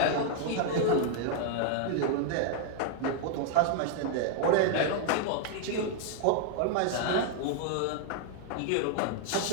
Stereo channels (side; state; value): both; different; correlation 0.00